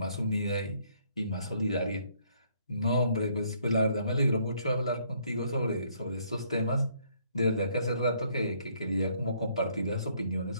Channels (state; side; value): inverted; both; correlation -0.67